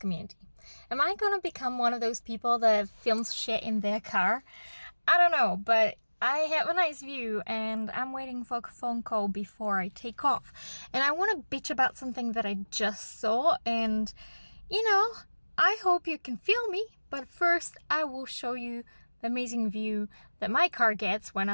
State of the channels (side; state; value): both; inverted; correlation -1.00